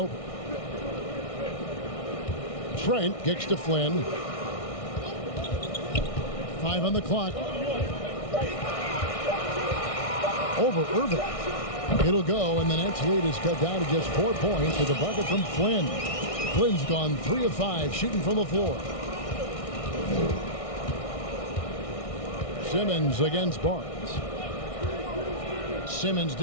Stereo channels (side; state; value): right; late; 1.6 ms